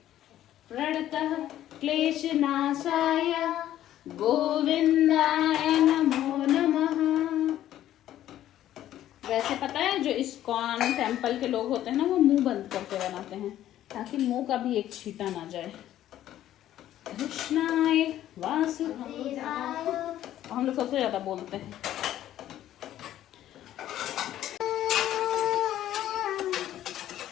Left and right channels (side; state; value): right; quieter; 12.5 dB